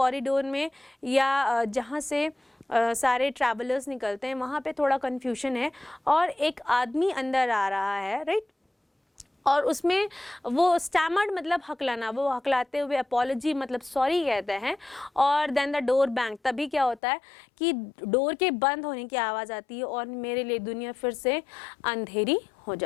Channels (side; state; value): right; drops out; at 17.0 s